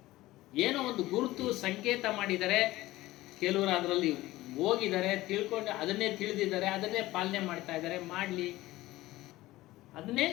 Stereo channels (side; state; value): right; quieter; 17.4 dB